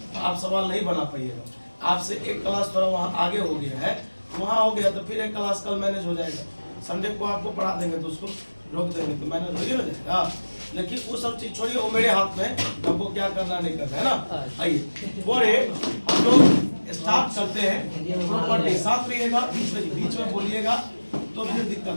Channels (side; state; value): both; inverted; correlation -1.00